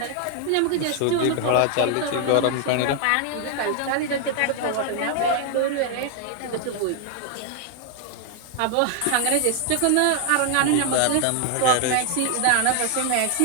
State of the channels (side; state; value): both; different; correlation 0.00